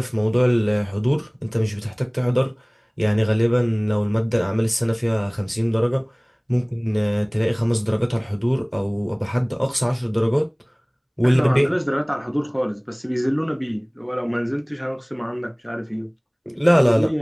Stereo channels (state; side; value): identical; both; correlation 1.00